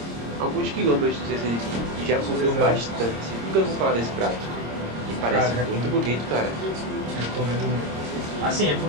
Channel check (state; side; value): late; left; 26 ms